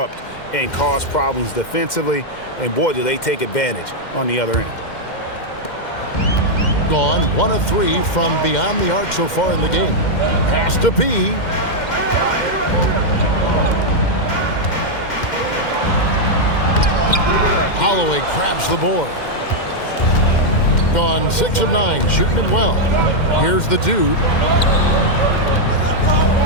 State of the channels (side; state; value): right; late; 2.1 ms